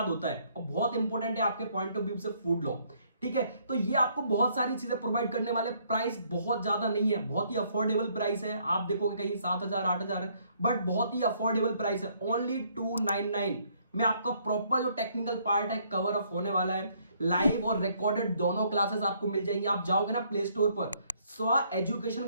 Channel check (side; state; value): both; inverted; correlation -0.67